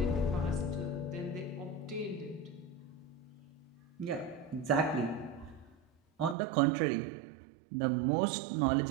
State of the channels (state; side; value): drops out; left; at 6.4 s